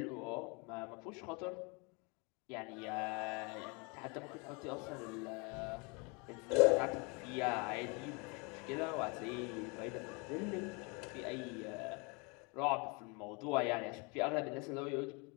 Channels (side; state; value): right; quieter; 30.8 dB